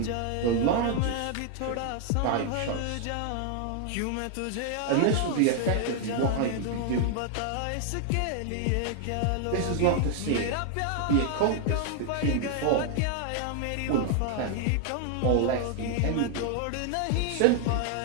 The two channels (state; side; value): different; both; correlation 0.00